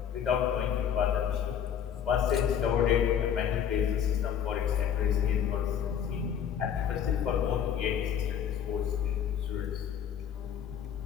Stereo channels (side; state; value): right; quieter; 8.6 dB